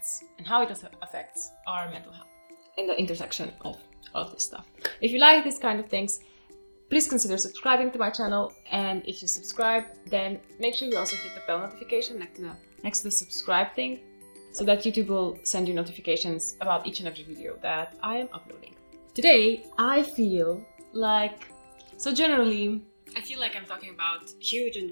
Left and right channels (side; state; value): both; inverted; correlation -1.00